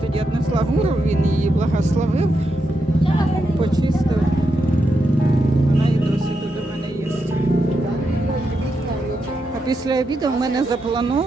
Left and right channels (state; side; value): normal; both; correlation 0.84